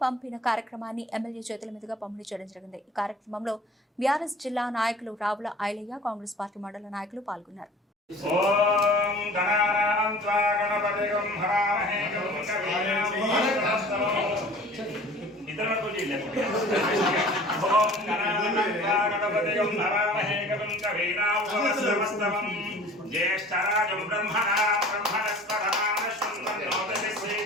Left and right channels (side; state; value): both; normal; correlation 0.45